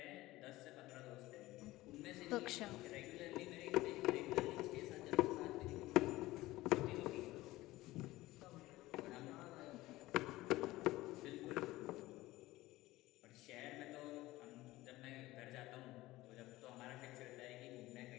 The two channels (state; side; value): quieter; right; 18.0 dB